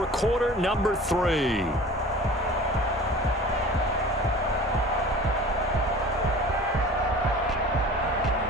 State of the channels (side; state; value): both; normal; correlation 0.42